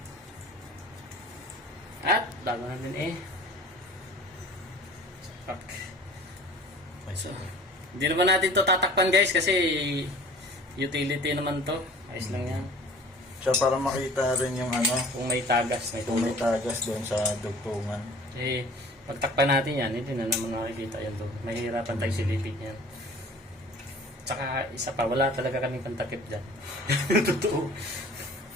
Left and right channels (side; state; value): both; normal; correlation 0.47